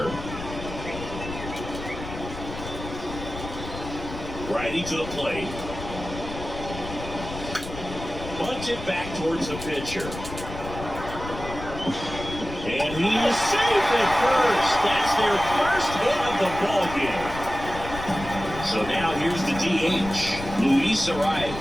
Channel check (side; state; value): left; noise; rumble, 10 dB below the sound